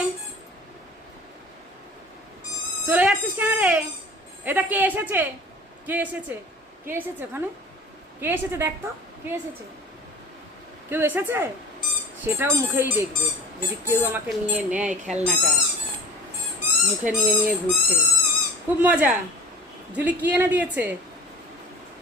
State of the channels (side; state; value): both; normal; correlation 0.41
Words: চলে যাচ্ছিস কেন রে? এটা কে এসেছে? কে এসেছে? কে এসেছে ওখানে? কে এসেছে দেখ তো, কে এসেছে? কেউ এসেছে? সেটাও মুখেই দেখবে। যদি কেউ আমাকে নিয়ে নেয় খেলনাটা, মুখে নিয়ে নিয়ে ঘুরতে, খুব মজা। জুলি কি এনে দিয়েছে?